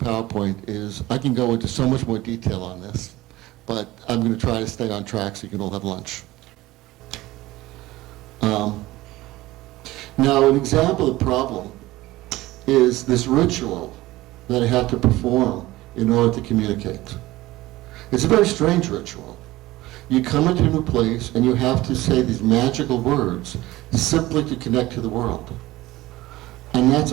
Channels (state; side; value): quieter; left; 18.0 dB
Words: is I can go into so much more detail on this, but I'm going to try to stay on track so you can all have lunch. Now, an example of the problem is this ritual that I have to perform in order to communicate. It's a very strange ritual. You come into a new place and you have to say these magical words simply to connect to the world. And that's